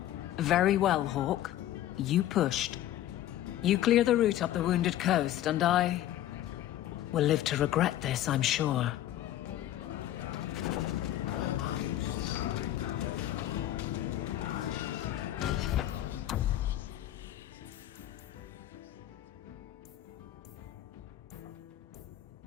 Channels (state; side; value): quieter; right; 13.1 dB